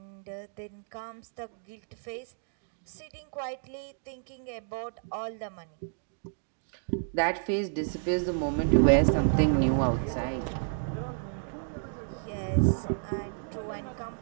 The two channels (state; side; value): silent; left; digital silence